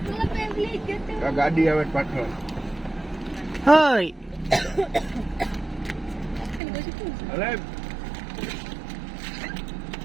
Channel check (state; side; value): drops out; left; at 6.6 s